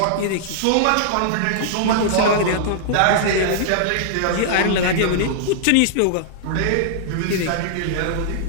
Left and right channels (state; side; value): different; both; correlation -0.01